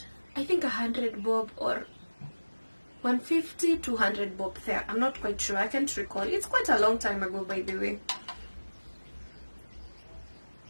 I think 100 bob or 150, 200 bob there. I'm not quite sure. I can't recall. It's quite a long time ago, by the way.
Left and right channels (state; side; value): inverted; both; correlation -1.00